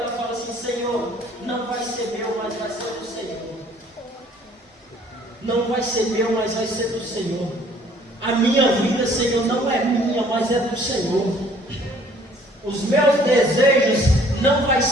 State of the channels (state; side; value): normal; both; correlation 0.57